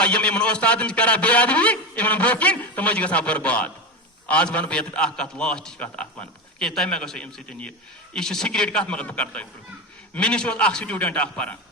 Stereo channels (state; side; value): normal; both; correlation 0.19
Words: یم استاد کران بے ادبی ان برکن تم گژھان برباد آج ون بہت اخ کت لاسٹ کت اخ ون کہ تمہیں مے گھو ام سن یہ سیکریٹ کت مگر بہ کر تہ مے نش اخ سٹوڈنٹ اخ پران